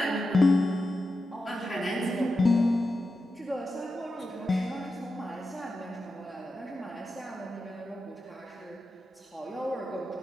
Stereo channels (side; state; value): both; normal; correlation 0.90